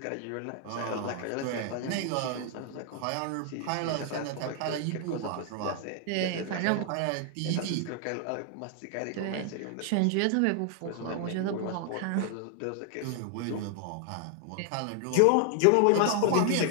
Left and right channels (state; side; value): different; both; correlation 0.00